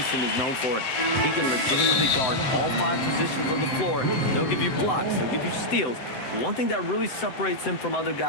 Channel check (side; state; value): right; late; 7.8 ms